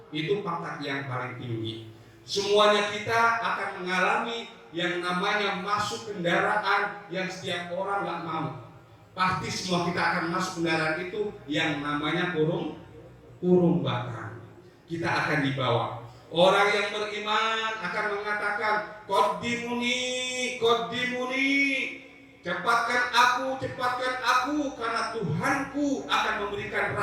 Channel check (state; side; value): identical; both; correlation 1.00